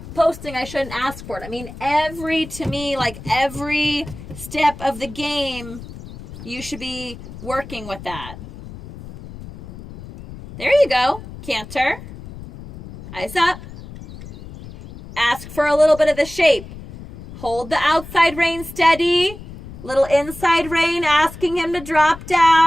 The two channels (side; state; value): left; noise; rumble, 14 dB below the sound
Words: posting, I shouldn't ask for it. I mean, every step of the game, you should be working with that. There you go. Canter. Eyes up. Ask for a little bit of the shape. Hold the outside rein steady. Little inside rein, asking him to drop